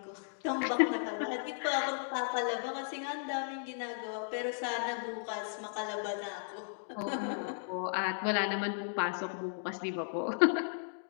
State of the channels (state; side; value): silent; right; digital silence